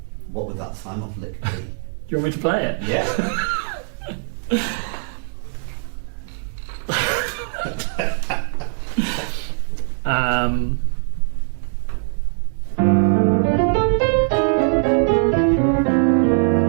what would that sign-off lick be? Do you want me to play it? Yeah.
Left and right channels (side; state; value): left; silent; digital silence